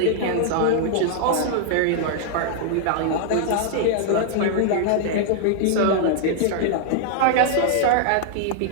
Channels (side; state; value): both; different; correlation -0.01